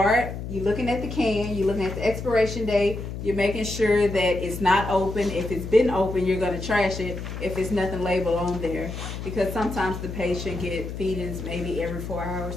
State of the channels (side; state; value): left; noise; hum, 7 dB below the sound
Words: you're looking at the can, you're looking at the expiration date, you're making sure that it's not open. If it's been open, you're going to trash it if it's nothing labeled on there. Because sometimes the patient get feedings maybe every 4